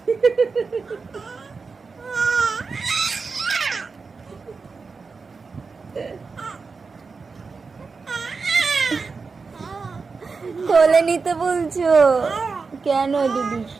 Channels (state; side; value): quieter; left; 4.7 dB